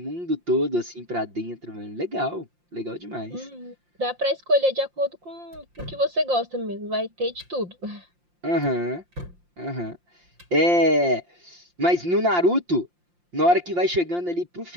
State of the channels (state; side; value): late; left; 5.7 ms